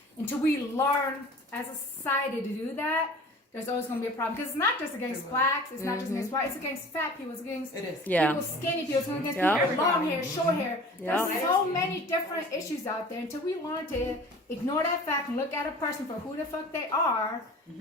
until we learn as a society to do that, there's always going to be a problem. Because it's not just against blacks, it's not just against white, it's against fat people, it's against It is. Yeah. people skinny people, it's against Yeah. people with long hair, short hair. Yeah. There's so many different issues out there. Until we learn to ignore that fact and look at a person for who the fuck they are,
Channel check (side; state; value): both; normal; correlation 0.43